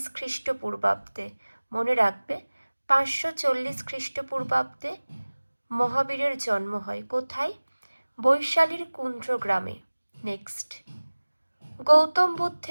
খ্রিস্টপূর্বাব্দে। মনে রাখবে ৫৪০ খ্রিস্টপূর্বাব্দে মহাবীরের জন্ম হয়। কোথায়? বৈশালীর কুন্দ্রগ্রামে। নেক্সট গৌতম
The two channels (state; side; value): inverted; both; correlation -1.00